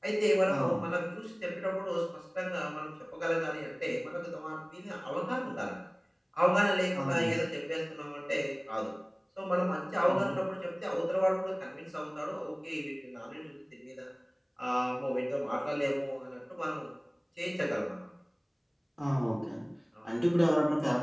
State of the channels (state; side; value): identical; both; correlation 1.00